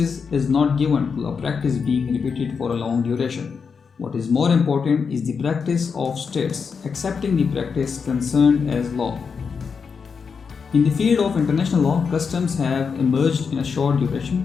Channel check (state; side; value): quieter; right; 5.8 dB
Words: is not given to a practice being repeated for a long duration. What is more important is the practice of states accepting the practice concerned as law. In the field of international law, customs have emerged in a short